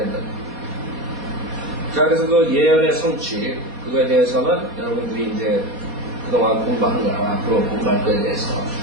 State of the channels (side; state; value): left; late; 4.2 ms